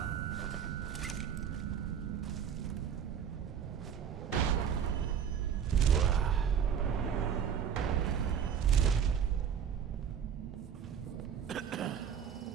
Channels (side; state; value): left; quieter; 8.1 dB